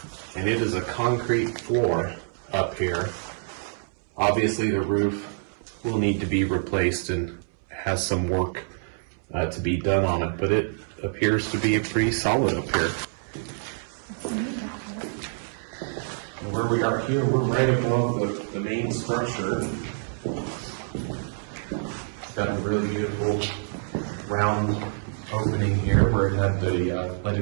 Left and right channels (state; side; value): silent; left; 61 dB below the other